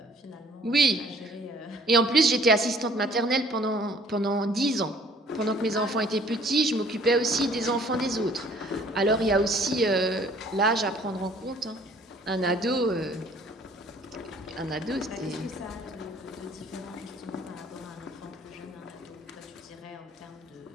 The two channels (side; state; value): both; normal; correlation 0.56